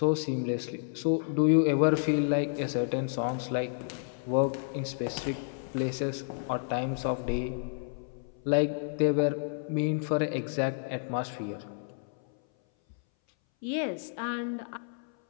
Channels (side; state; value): right; silent; 58 dB below the other